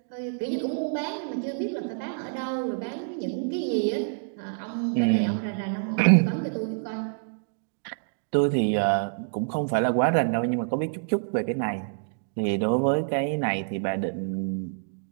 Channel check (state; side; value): silent; left; digital silence